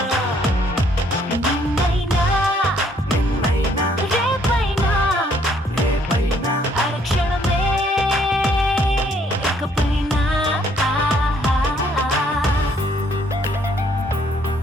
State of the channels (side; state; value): both; normal; correlation 0.66